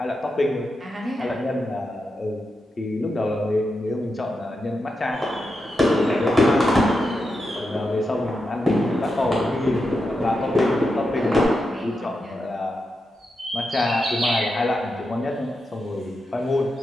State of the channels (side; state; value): both; normal; correlation 0.87